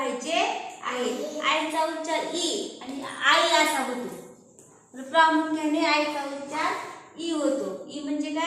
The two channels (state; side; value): identical; both; correlation 1.00